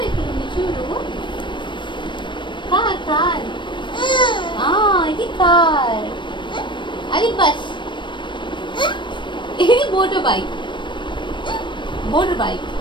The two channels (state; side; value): late; right; 0.23 ms